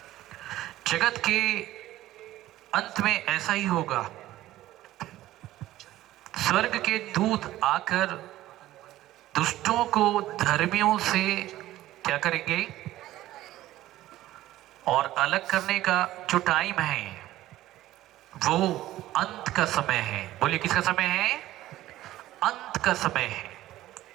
जगत के अंत में ऐसा ही होगा, स्वर्ग के दूत आकर दुष्टों को धर्मियों से क्या करेंगे, और अलग करने का जो टाइम है वो अंत का समय है। बोलिए किसका समय है? अंत का समय है।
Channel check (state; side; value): quieter; left; 15.1 dB